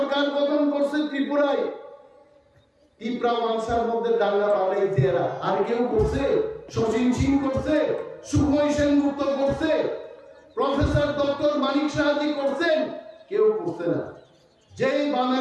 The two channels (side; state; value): both; identical; correlation 1.00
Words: গঠন করছে ত্রিপুরায়, ত্রিপুরা মানসার মধ্যে দাঙ্গা বাড়াইছে এরা। আর কেউ করছে? শচীন সিং করছে, সুখময় সেনগুপ্ত করছে, প্রফেসর ডক্টর মানিক সাহাজি করছেন? কেউ করছে না। যেই